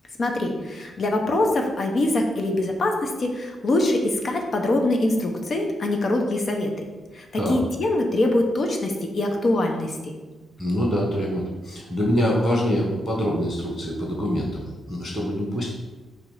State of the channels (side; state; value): both; normal; correlation 0.83